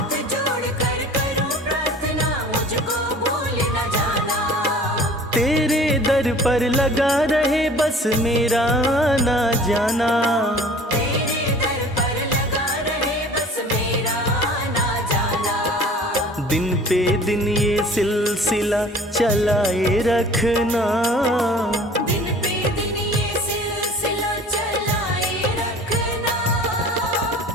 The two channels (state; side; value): normal; both; correlation 0.47